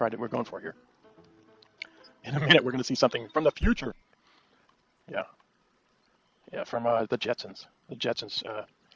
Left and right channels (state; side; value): identical; both; correlation 1.00